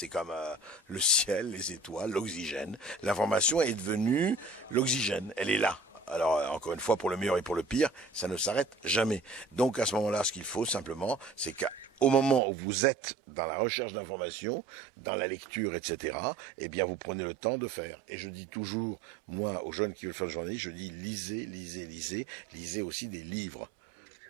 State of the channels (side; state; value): left; drops out; at 12.4 s